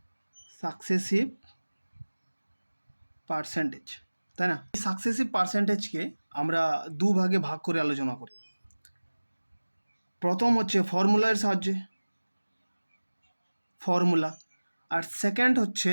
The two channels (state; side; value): inverted; both; correlation -1.00